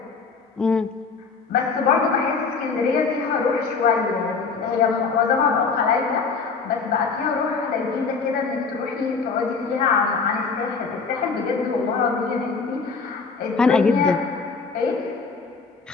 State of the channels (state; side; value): quieter; right; 4.9 dB